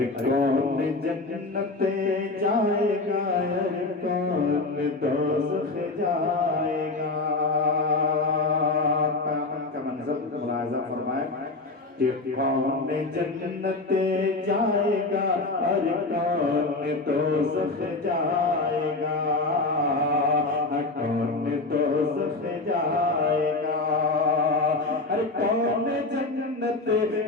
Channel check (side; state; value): right; quieter; 3.3 dB